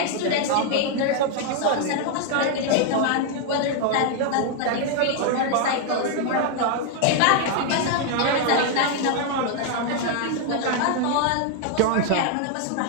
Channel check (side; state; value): both; different; correlation 0.00